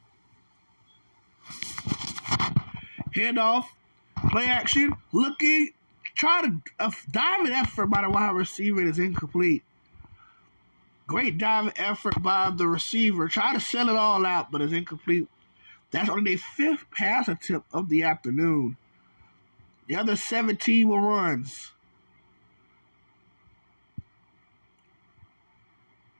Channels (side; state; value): both; inverted; correlation -1.00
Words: Handoff. Play action. Looking. Trying to diving effort by the wide receiver is incomplete. Great diving effort by the receiver. Try to sell it all out, but it's incomplete. That's only their 5th pass attempt of the afternoon. The other 17 were runs.